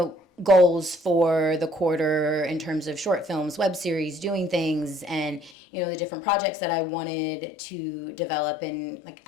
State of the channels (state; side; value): drops out; right; at 5.5 s